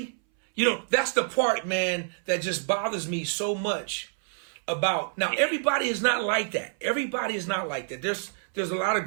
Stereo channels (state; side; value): silent; left; 60 dB below the other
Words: That's the part, man, that just bothers me so much. About now, everybody is not like that. Everybody is not like that. There's a lot of